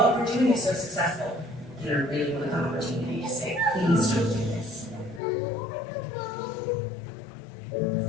we're doing is so successful. And I really want the opportunity to say, please don't do this.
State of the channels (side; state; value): right; drops out; at 5.2 s